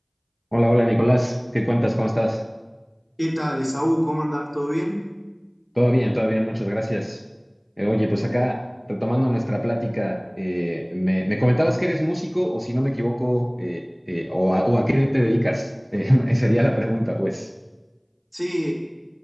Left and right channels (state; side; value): identical; both; correlation 1.00